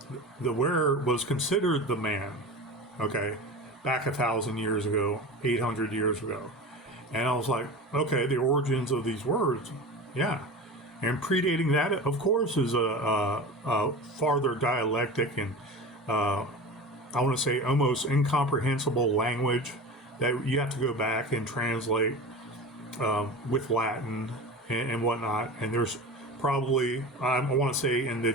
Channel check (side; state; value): both; normal; correlation 0.31